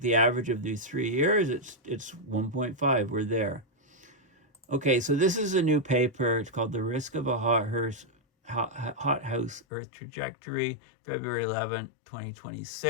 the average of these 3 years, it's 1.5. We're there. Okay, so this is a new paper. It's called The Risk of a Hothouse Earth Trajectory, February 11th,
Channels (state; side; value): drops out; right; at 9.7 s